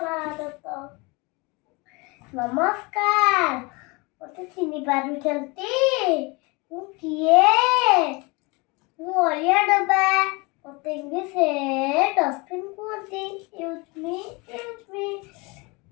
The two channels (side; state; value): right; quieter; 27.2 dB